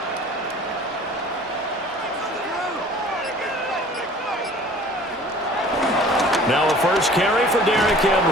Now a first carry for Derrick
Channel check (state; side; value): normal; both; correlation 0.48